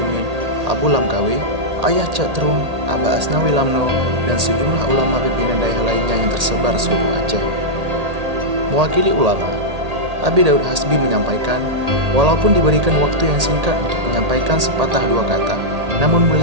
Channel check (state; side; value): late; left; 1.8 ms